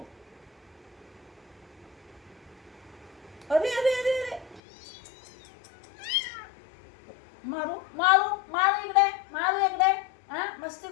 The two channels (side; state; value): right; drops out; at 4.6 s